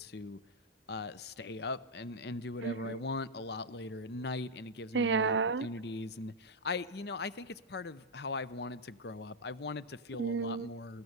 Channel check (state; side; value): normal; both; correlation -0.02